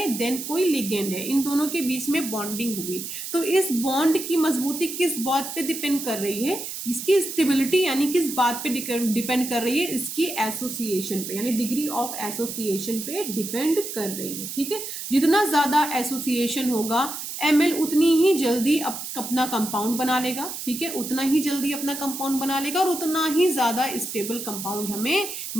देन कोई लिगेंड है, इन दोनों के बीच में बॉन्डिंग हुई, तो इस बॉन्ड की मजबूती किस बात पे डिपेंड कर रही है? इसकी स्टेबिलिटी यानी किस बात पे डिपेंड कर रही है? इसकी एसोसिएशन पे, यानी डिग्री ऑफ एसोसिएशन पे डिपेंड कर रही है। ठीक है, जितना ज्यादा एसोसिएशन होगा, Ml उतनी ही जल्दी अपना कंपाउंड बना लेगा। ठीक है, उतना ही जल्दी अपना कंपाउंड बना लेगा और उतना ही ज्यादा स्टेबल कंपाउंड हमें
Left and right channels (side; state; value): right; noise; hiss, 7 dB below the sound